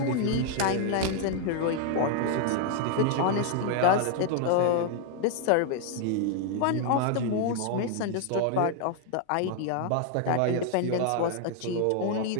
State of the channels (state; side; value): different; both; correlation 0.00